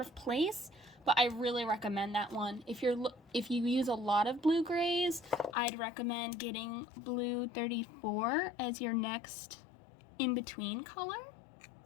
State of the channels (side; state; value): right; drops out; at 5.6 s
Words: place, but I really recommend that one. If you use a lot of blue grays, I'd recommend getting blue 34 as your next in-between color.